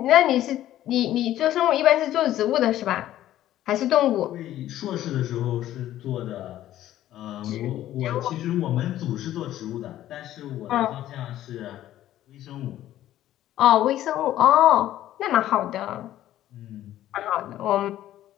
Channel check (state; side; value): quieter; right; 13.2 dB